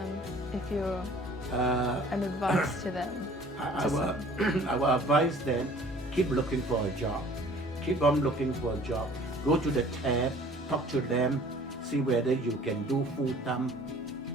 if you're an advice to them? I will advise them, keep looking for a job. Keep on looking for a job. Go to the tab, talk to them, see whether you can do full time.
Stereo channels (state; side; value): normal; both; correlation 0.51